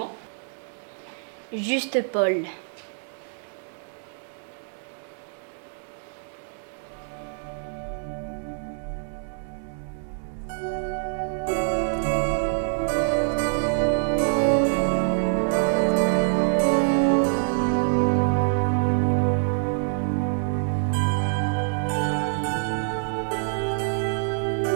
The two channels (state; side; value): silent; left; 61 dB below the other